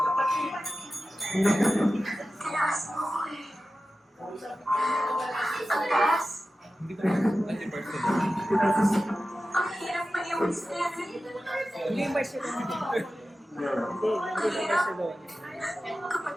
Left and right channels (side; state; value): both; normal; correlation 0.94